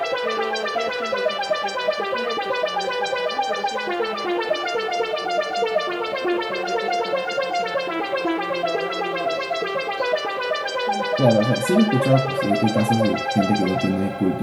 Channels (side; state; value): both; identical; correlation 1.00